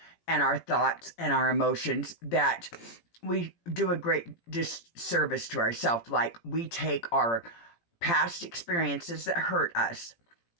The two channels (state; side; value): late; right; 17 ms